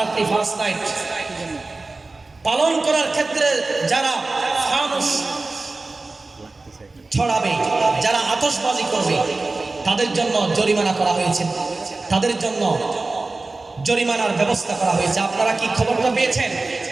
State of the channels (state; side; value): quieter; left; 3.4 dB